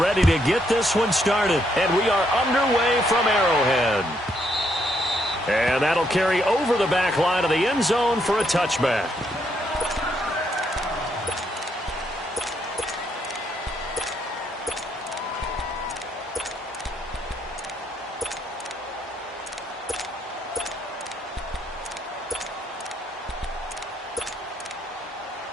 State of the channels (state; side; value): normal; both; correlation 0.74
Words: ready to get this one started, and we are underway from Arrowhead. And that'll carry over the back line of the end zone for a touchback.